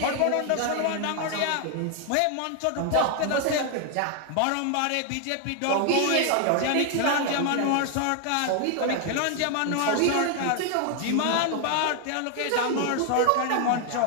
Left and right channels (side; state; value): both; different; correlation 0.00